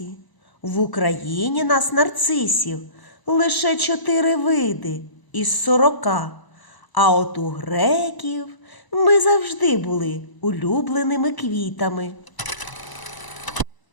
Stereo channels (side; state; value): right; late; 1.0 ms